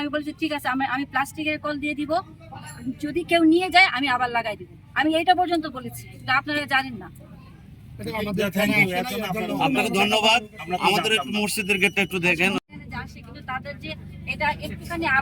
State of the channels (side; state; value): both; identical; correlation 1.00